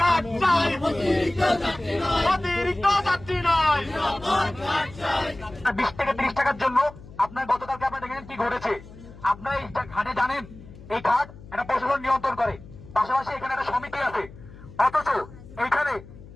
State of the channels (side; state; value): left; noise; hum, 18 dB below the sound